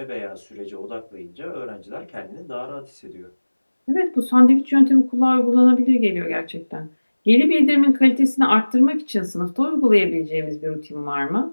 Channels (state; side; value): inverted; both; correlation -1.00